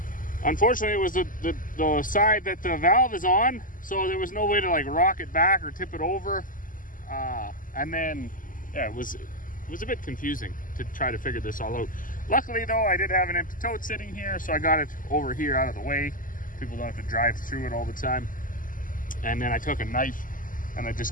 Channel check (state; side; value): late; right; 0.39 ms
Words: unfortunately, it was the side that the valve is on, so there was no way to like rock it back or tip it over. And then, yeah, it was a bit confusing to try to figure this all out. Luckily, though, I did have an empty tote sitting here, so I got it over here out of the way. People don't have to drive through it all the time. And then I took a knife and I